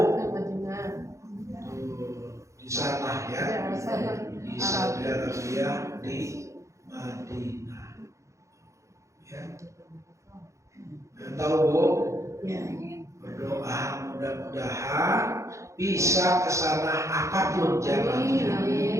Madinah. Di sana ya. Di Saudi Arabia, di Madinah. Ya. Dan tahu, Bu? Ya. Berdoa mudah-mudahan bisa ke sana apapun jalannya.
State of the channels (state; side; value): late; left; 0.15 ms